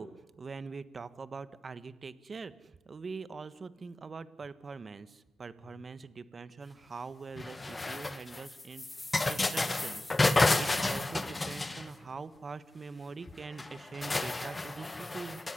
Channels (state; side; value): normal; both; correlation 0.95